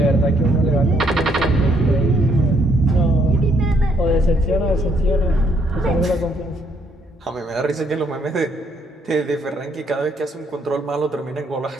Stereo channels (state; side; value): normal; both; correlation 0.70